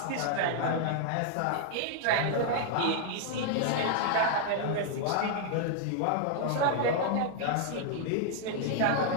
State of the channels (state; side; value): different; both; correlation -0.01